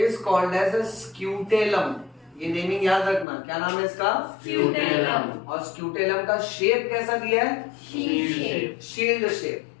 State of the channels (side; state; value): right; drops out; at 3.2 s